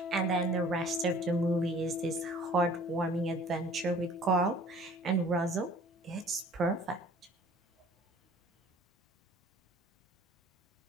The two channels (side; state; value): both; normal; correlation 0.51